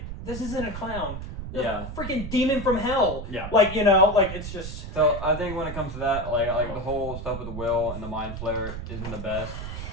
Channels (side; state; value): right; noise; rumble, 8 dB below the sound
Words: this isn't a clown. Yeah. Freaking demon from hell. Yeah. Like, it's just. So I think when it comes to that, like the whole stuff with the Will and the Mind Flayer isn't the best.